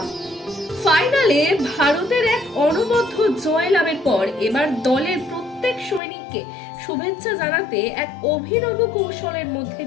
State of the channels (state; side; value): drops out; right; at 6.0 s